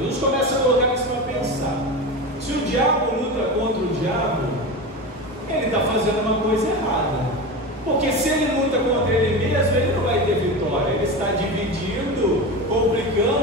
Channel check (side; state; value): both; normal; correlation 0.24